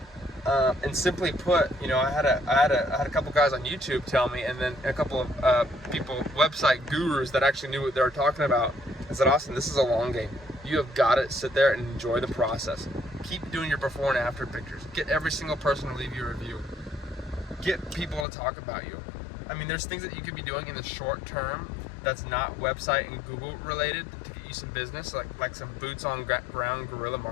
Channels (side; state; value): right; drops out; at 18.2 s